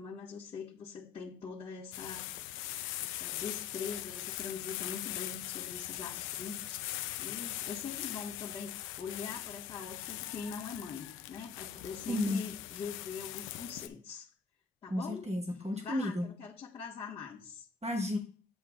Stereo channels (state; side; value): quieter; right; 4.9 dB